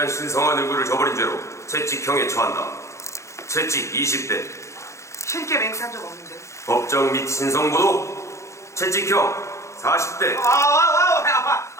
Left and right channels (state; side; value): late; right; 0.14 ms